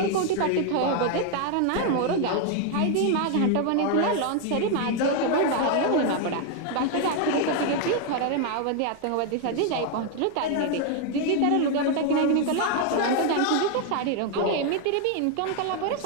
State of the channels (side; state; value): both; different; correlation 0.01